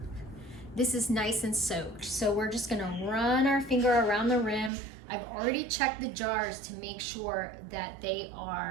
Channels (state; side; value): drops out; left; at 4.7 s